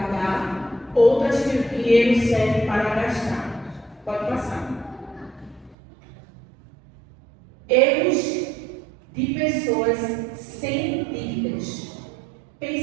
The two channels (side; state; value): left; drops out; at 5.8 s